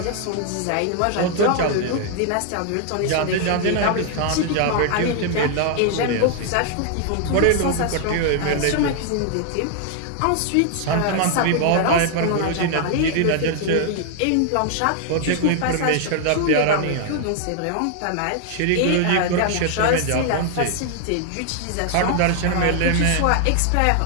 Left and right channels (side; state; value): both; different; correlation 0.00